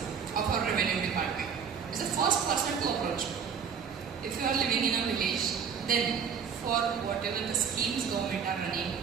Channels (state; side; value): quieter; left; 6.9 dB